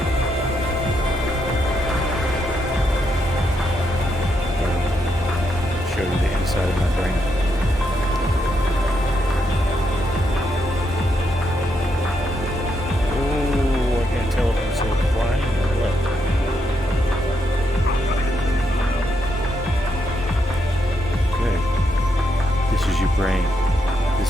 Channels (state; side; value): normal; both; correlation 0.80